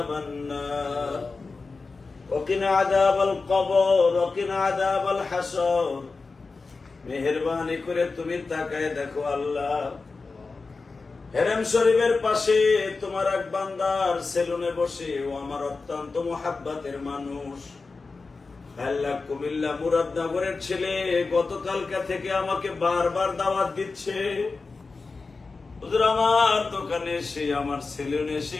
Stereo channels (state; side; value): quieter; right; 4.1 dB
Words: النار وقنا عذاب القبر وقنا عذاب الحشر মেহেরবানি করে তুমি তাকায় দেখো আল্লাহ, হেরেম শরীফের পাশে তোমার এক বান্দার সেলুনে বসে ও আমার অত্যন্ত মুহাব্বতের মানুষ আল্লাহ কুমিল্লা মুরাদনগরের ছেলে গতকালকা থেকে আমাকে বারবার দাওয়াত দিচ্ছে, হুজুর আমার দোকানে এসে আমার সেলুনে এসে